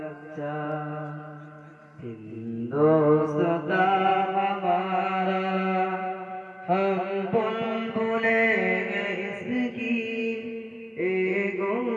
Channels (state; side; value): identical; both; correlation 1.00